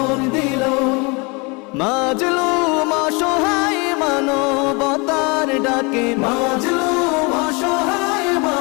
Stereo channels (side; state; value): right; quieter; 29.2 dB